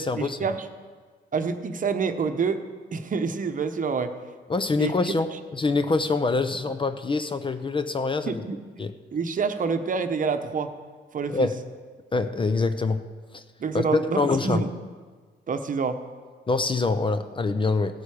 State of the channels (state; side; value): normal; both; correlation 0.59